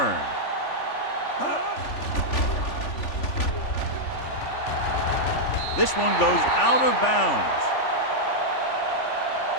This one goes out of bounds.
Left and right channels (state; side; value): late; right; 3.4 ms